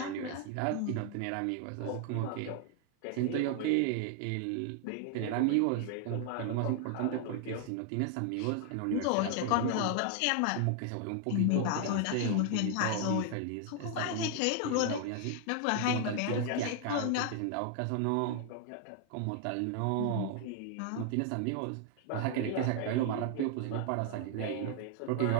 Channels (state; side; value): different; both; correlation 0.00